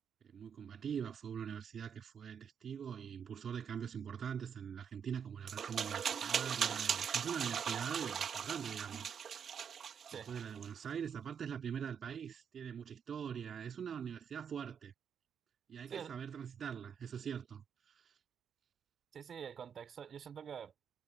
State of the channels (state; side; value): quieter; left; 7.5 dB